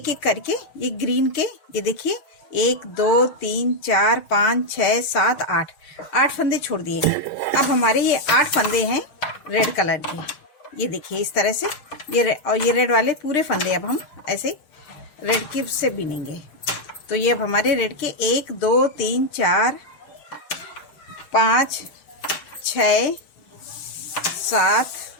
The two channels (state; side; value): late; right; 6.4 ms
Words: एक करके ये ग्रीन के ये देखिए 1 2 3 4 5 6 7 8 फंदे छोड़ दिए। अब हमारे ये 8 फंदे हैं रेड कलर के। ये देखिए इस तरह से ये रेड वाले पूरे फंदे अब हम ऐसे रेड की से बिनेंगे। तो ये अब हमारे रेड के 1 2 3 4 5 6 7